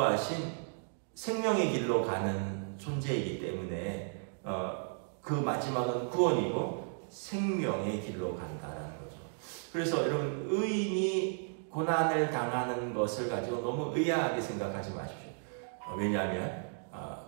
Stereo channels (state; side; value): silent; left; 55 dB below the other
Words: 생명의 길로 가는 존재이기 때문에 그 마지막은 구원이고 생명의 길로 간다라는 거죠. 그래서 여러분, 의인이 고난을 당하는 것을 가지고 너무 의아하게 생각하지 마십시오. 왜냐하면